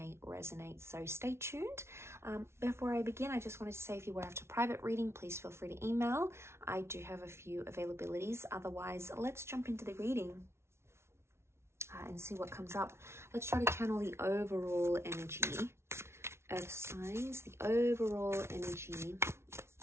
resonate, so stay tuned. Before I begin, I just wanted to say if you were after private reading, please feel free to email. I do have a few availabilities. Otherwise, let's jump into the reading and see what comes up. Let's try to channel the overall energy, Earth signs, the overall energy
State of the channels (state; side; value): late; left; 0.13 ms